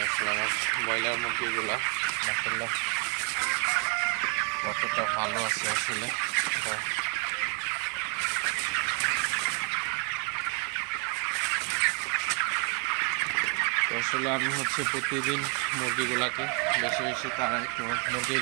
আসলে আমার ব্রয়লার মুরগিগুলা মাশাআল্লাহ কতটা ভালো আছে আসলে। তো আসলে আমি হচ্ছে প্রতিদিন মুরগিগুলাকে বেশি বেশি তাড়াই। তো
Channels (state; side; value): quieter; left; 32.8 dB